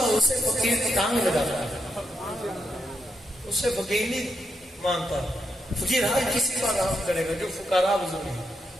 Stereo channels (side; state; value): both; normal; correlation 0.83